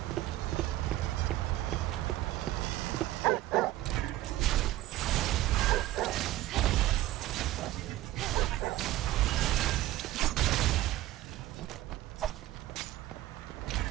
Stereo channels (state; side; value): quieter; left; 15.4 dB